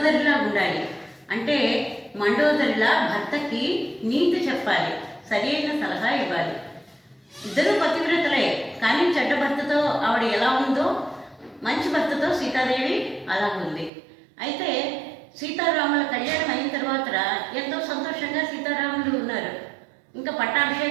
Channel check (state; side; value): drops out; left; at 13.9 s